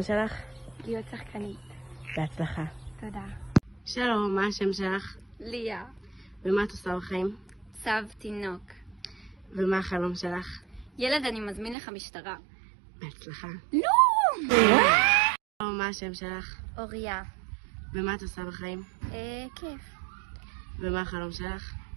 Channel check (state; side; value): drops out; left; at 11.8 s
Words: שלך? להיות שחקנית. בהצלחה. תודה. שלום, מה השם שלך? ליה. ומה את עושה בחיים? צב תינוק. ומה החלום שלך? ילד, אני מזמין לך משטרה. בהצלחה. לא! שלום, מה השם שלך? אוריה. ומה את עושה בחיים? כיף. ומה החלום שלך?